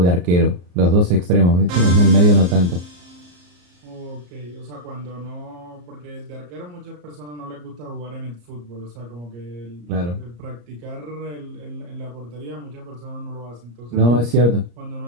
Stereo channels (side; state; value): left; late; 34 ms